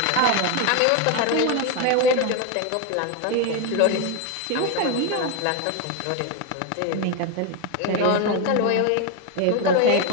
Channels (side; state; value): both; different; correlation 0.02